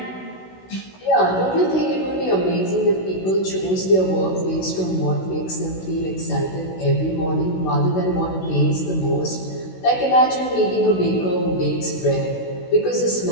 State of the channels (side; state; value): right; late; 16 ms